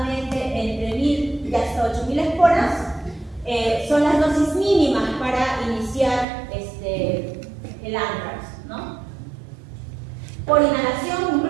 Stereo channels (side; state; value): left; drops out; at 6.2 s